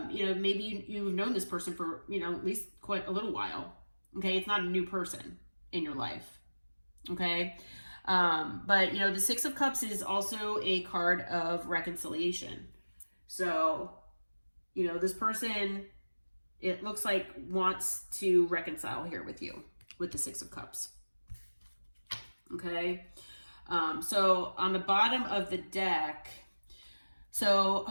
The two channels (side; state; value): both; inverted; correlation -1.00